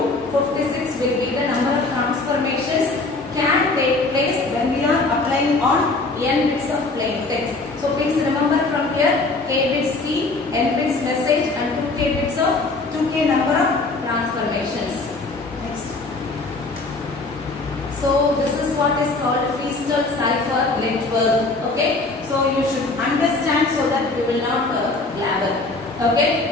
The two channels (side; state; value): right; quieter; 3.4 dB